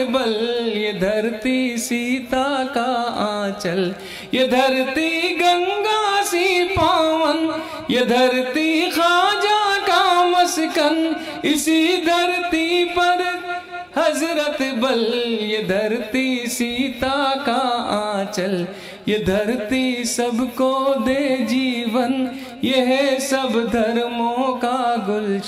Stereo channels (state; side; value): identical; both; correlation 1.00